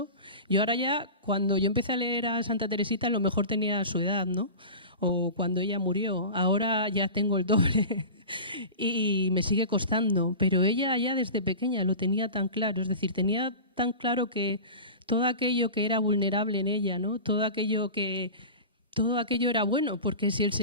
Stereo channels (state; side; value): inverted; both; correlation -0.32